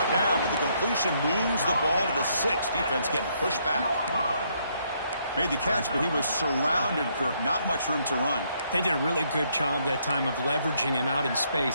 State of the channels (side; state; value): both; inverted; correlation -0.72